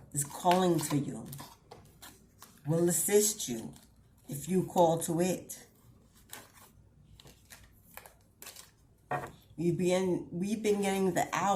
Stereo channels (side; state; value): both; identical; correlation 1.00